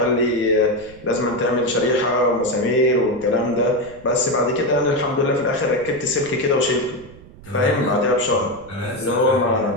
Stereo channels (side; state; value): right; noise; rumble, 21 dB below the sound